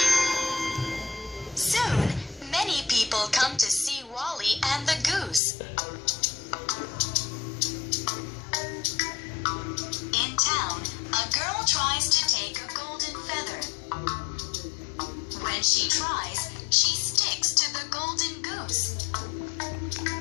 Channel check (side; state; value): right; drops out; at 5.4 s